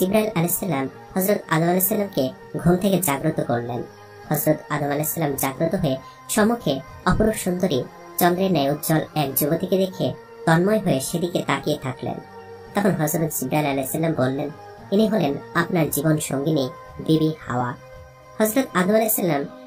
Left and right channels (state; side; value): identical; both; correlation 1.00